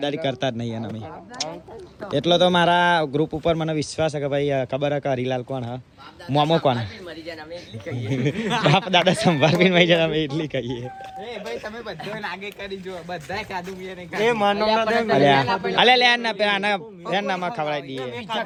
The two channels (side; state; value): both; identical; correlation 1.00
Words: કરતા જ નહીં અમે. એટલો તો મારા ગ્રુપ ઉપર મને વિશ્વાસ છે કે ભાઈ ખબર હે કે હરીલાલ કોણ હા મોમો કોણ બાપ દાદા સંભાળવીને મરી જાય અમે એટલી કહીએ. નામાં ખવડાવી દઈએ.